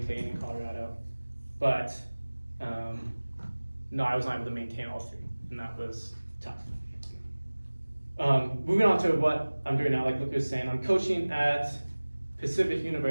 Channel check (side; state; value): both; inverted; correlation -1.00